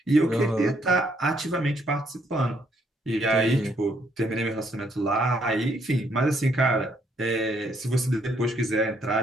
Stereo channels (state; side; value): normal; both; correlation 0.71